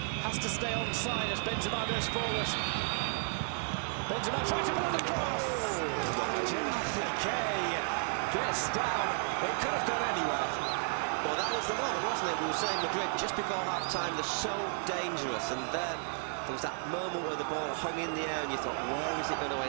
Has to stay onside as Benzema goes forward. Benzema tries to pull it across. Oh, and Gerard Piqué gets down. It could have gone anywhere. Well, that was the moment, wasn't it? We were saying Madrid just before half-time, they're so dangerous, and there was that moment where the ball hung in the air and you thought, where is it going to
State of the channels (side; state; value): left; silent; 56 dB below the other